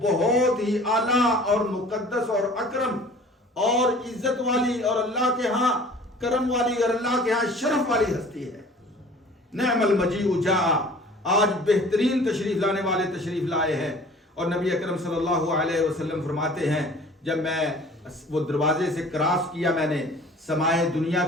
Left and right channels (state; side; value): normal; both; correlation 0.47